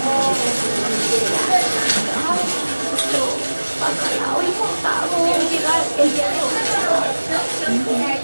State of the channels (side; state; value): both; inverted; correlation -1.00